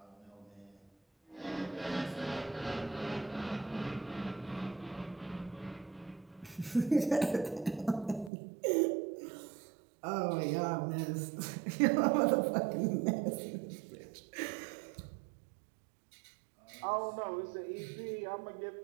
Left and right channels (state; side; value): drops out; left; at 8.3 s